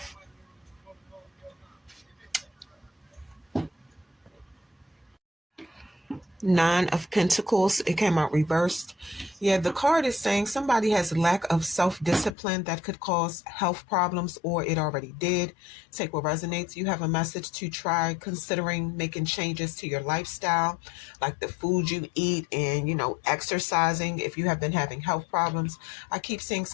Nine of Pentacles. It came out reversed. Yeah, the card is saying somebody has lack of self-discipline that could cause health problems, or it already did. Take what resonates. You have a message to try considering making changes to your lifestyle, like the food you eat and, exercising if you have been having health problems. I keep seeing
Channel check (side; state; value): right; drops out; at 12.4 s